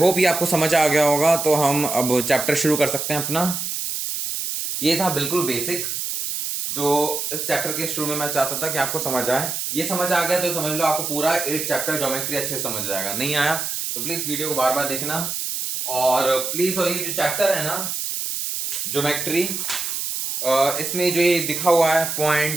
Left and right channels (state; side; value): noise; right; hiss, 3 dB below the sound